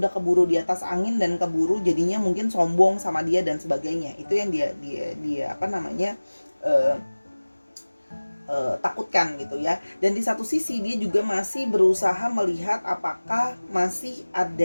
keburu di atas angin dan keburu jadinya mungkin sombong sama dia dan sebagainya. Itu yang dia apa namanya takutkan gitu ya. Dan di satu sisi dia juga masih berusaha melihat apakah masih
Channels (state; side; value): inverted; both; correlation -1.00